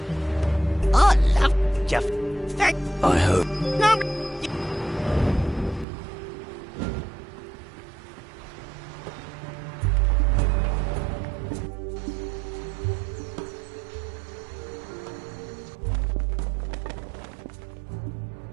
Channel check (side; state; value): left; drops out; at 5.9 s